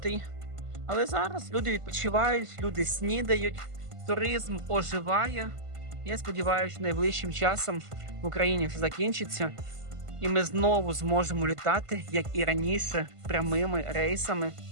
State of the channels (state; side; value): late; left; 1.5 ms